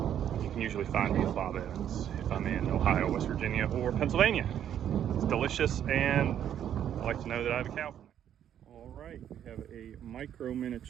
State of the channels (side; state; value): left; quieter; 10.0 dB